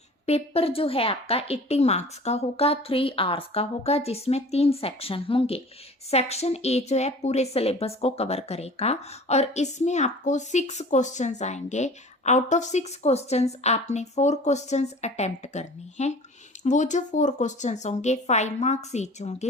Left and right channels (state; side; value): normal; both; correlation 0.43